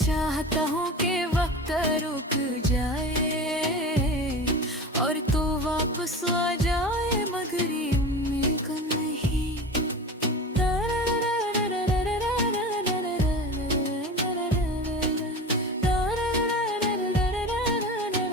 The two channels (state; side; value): normal; both; correlation 0.32